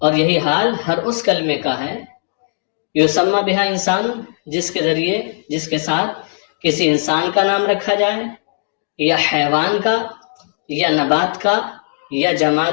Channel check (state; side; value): silent; right; digital silence